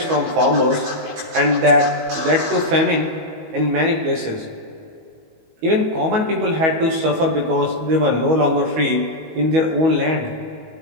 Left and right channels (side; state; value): left; late; 19 ms